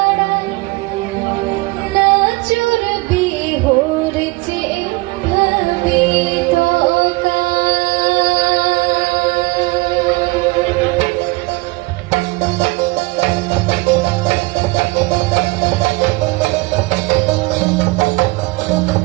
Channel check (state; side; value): quieter; left; 24.0 dB